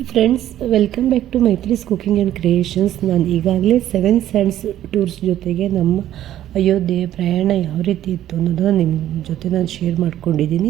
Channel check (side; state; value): left; quieter; 12.3 dB